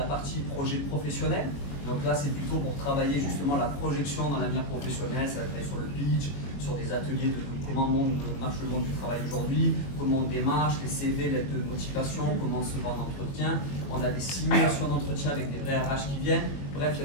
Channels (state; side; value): late; right; 21 ms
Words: partie projet professionnel. Donc là, c'est plutôt pour travailler justement la projection dans l'avenir professionnel, ça va travailler sur le pitch, sur des ateliers de comment marche le monde du travail aujourd'hui, comment on démarche, les CV, l'aide de motivation, comment on se vend d'entretien. On a des simulations d'entretien avec des vrais RH qui viennent. Bref, il y